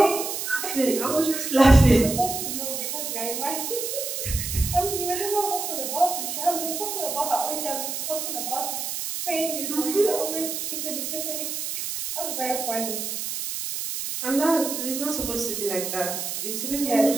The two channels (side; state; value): right; noise; hiss, 4 dB below the sound